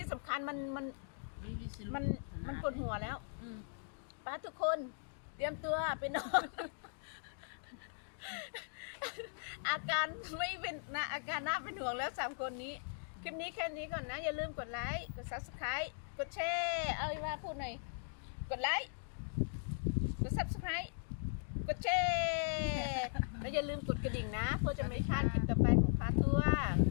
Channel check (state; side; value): silent; right; digital silence